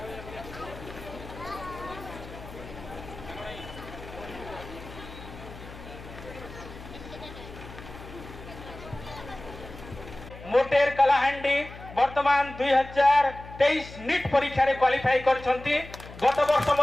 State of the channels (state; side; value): noise; left; hum, 15 dB below the sound